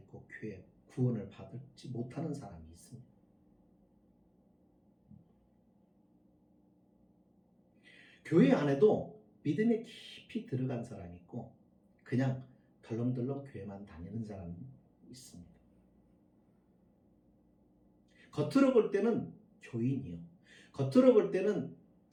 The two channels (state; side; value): identical; both; correlation 1.00